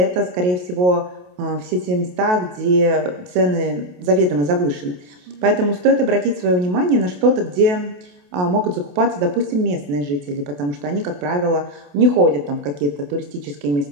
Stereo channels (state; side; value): late; left; 28 ms